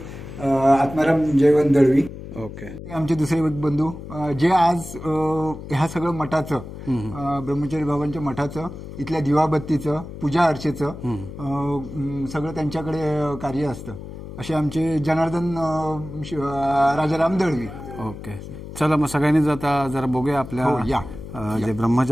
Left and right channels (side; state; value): left; noise; hum, 12 dB below the sound